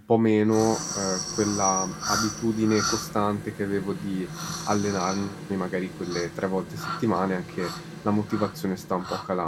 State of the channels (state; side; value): identical; both; correlation 1.00